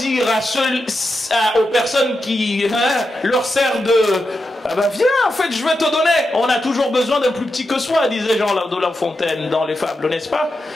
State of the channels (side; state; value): both; normal; correlation 0.88